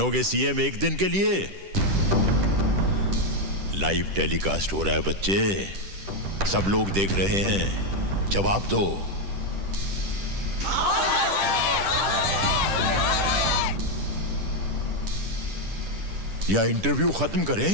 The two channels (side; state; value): left; late; 10 ms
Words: सीएम एक दिन के लिए? लाइव टेलीकास्ट हो रहा है बच्चे, सब लोग देख रहे हैं, जवाब दो। या इंटरव्यू खत्म